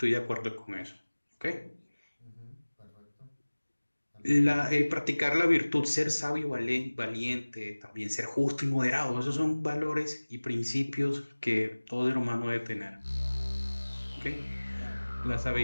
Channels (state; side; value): inverted; both; correlation -1.00